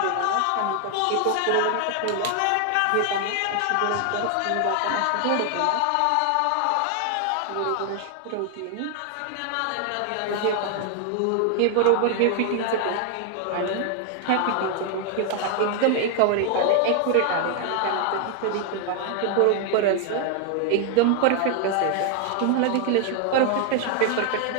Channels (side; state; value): both; different; correlation 0.00